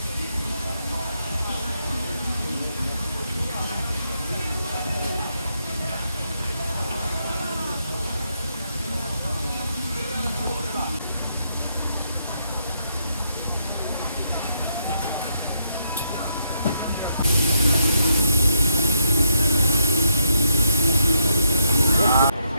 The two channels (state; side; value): inverted; both; correlation -0.79